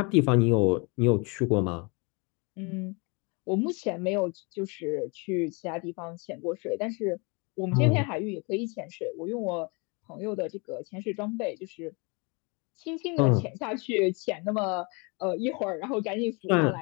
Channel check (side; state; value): right; quieter; 31.0 dB